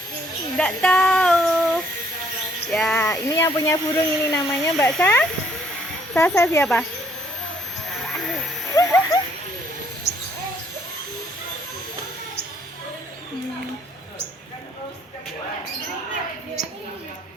Nggak tahu. Ya, ini yang punya burung ini namanya Mbak Sa. Sasa siapa?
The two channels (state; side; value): normal; both; correlation 0.66